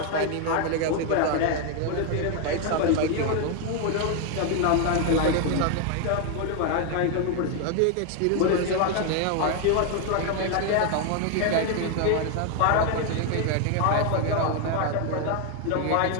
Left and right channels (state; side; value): different; both; correlation 0.01